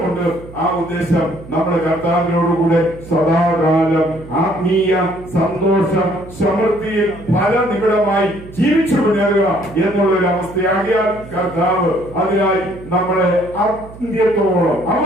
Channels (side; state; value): right; noise; hum, 17 dB below the sound